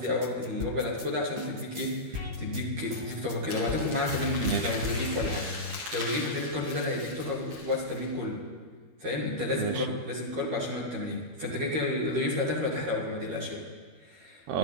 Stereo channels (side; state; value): left; late; 13 ms